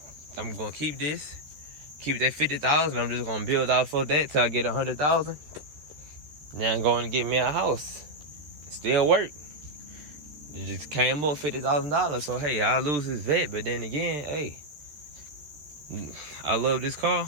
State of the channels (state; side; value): late; left; 13 ms